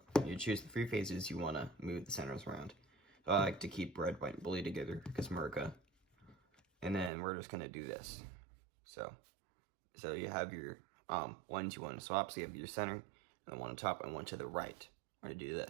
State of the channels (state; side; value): drops out; left; at 7.1 s